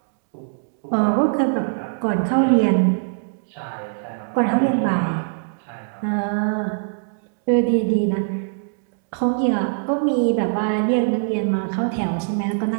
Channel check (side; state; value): left; silent; digital silence